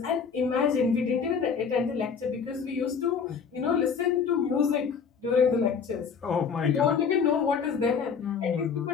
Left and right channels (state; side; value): quieter; right; 6.2 dB